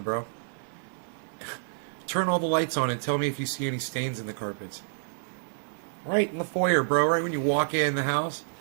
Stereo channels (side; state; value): left; silent; digital silence